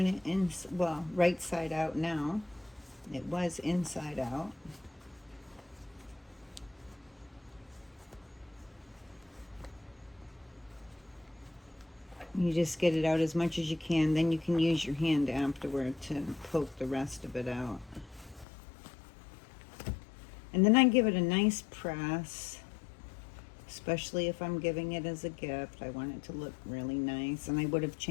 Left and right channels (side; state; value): right; drops out; at 18.4 s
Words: it in, well, right side out now. It was inside out. You just get it out as much as you can, then you can use your hand afterward to poke the rest of it out. And then I give it a nice press, especially if I'm giving it as a gift. I want it to look really nice, and I would have